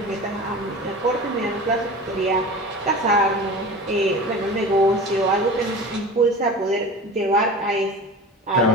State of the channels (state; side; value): normal; both; correlation 0.34